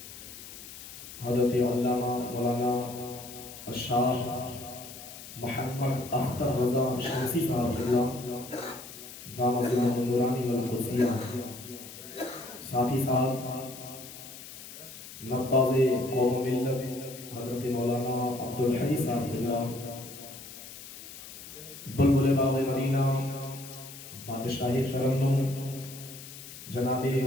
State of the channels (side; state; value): left; noise; hiss, 14 dB below the sound